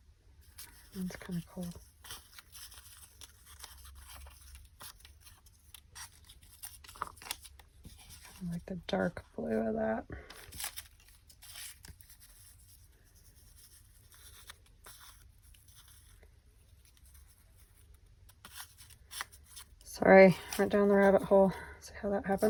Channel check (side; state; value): both; identical; correlation 1.00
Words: That's kind of cool. I like the dark blue of that. Sorry, went down the rabbit hole. See how that